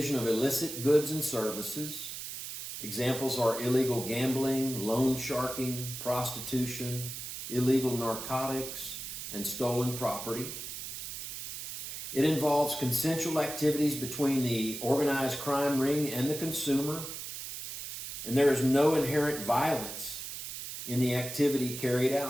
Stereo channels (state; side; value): noise; right; hiss, 8 dB below the sound